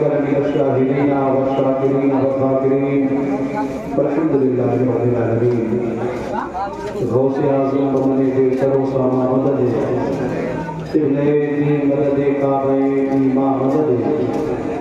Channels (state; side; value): identical; both; correlation 1.00